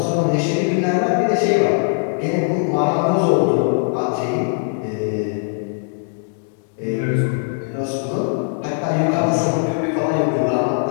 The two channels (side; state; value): right; silent; 66 dB below the other